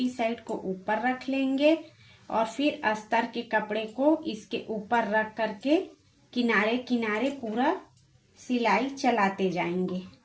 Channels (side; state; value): both; identical; correlation 1.00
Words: साइड को ऊपर रख लेंगे और फिर अस्तर के कपड़े को इसके ऊपर रख करके किनारे किनारे पूरा सिलाई चलाते जाएंगे